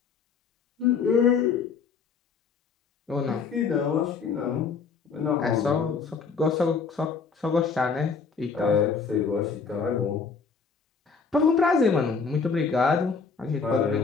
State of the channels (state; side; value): quieter; right; 5.4 dB